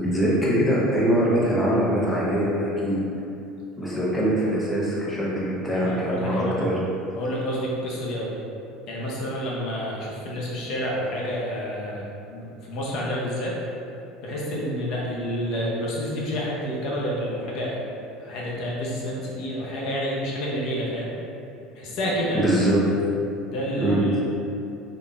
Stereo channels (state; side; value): normal; both; correlation 0.43